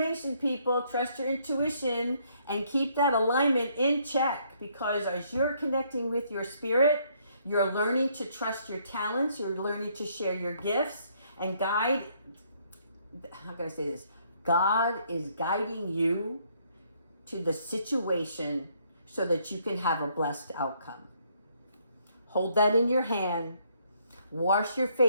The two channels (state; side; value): inverted; both; correlation -0.68